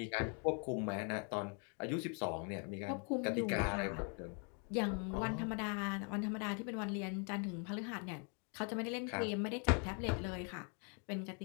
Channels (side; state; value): right; quieter; 38.9 dB